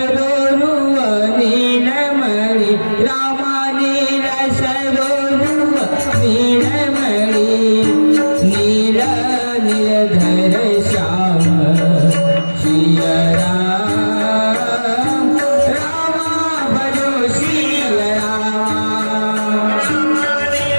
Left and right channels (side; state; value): both; inverted; correlation -1.00